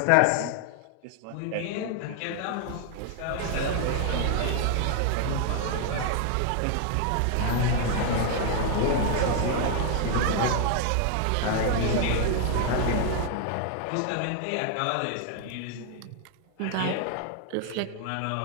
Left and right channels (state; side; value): different; both; correlation 0.00